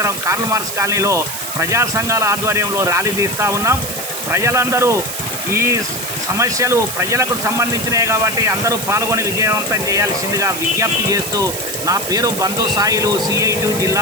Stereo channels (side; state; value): right; noise; hiss, 6 dB below the sound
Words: కార్ల్ మార్క్స్ కాలనీలో ప్రజా సంఘాల ఆధ్వర్యంలో ర్యాలీ తీస్తూ ఉన్నాం. ప్రజలందరూ ఈ సమస్యలు ప్రజలకు సంబంధించినవి కాబట్టి అందరూ పాల్గొని విజయవంతం చేయాల్సిందిగా విజ్ఞప్తి చేస్తూ నా పేరు బంధు సాయిలు, సిఐటి